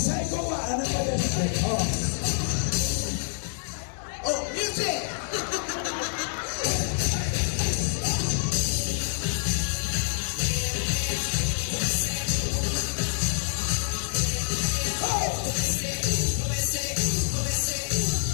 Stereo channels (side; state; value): right; silent; digital silence